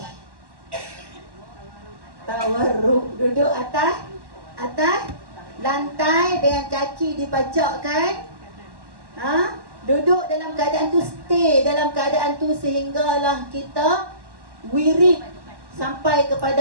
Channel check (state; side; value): late; left; 1.1 ms